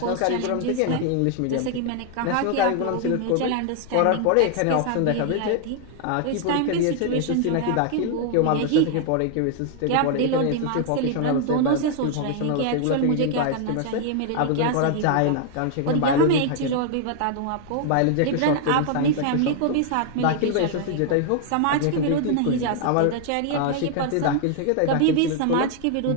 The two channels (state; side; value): different; both; correlation 0.00